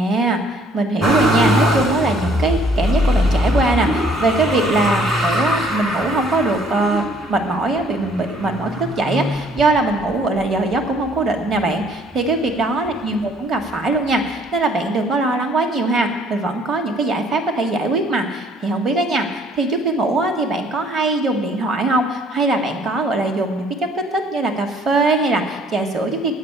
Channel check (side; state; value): both; normal; correlation 0.60